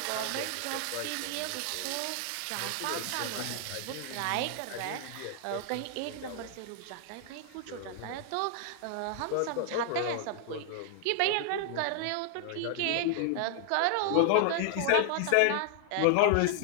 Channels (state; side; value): different; both; correlation 0.00